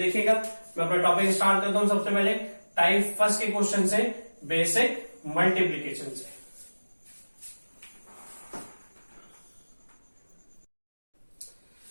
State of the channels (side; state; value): both; inverted; correlation -1.00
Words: मैं अपना टॉपिक स्टार्ट करता हूं। सबसे पहले टाइप फर्स्ट के क्वेश्चन से, बेसिक मल्टीप्लीकेशन से।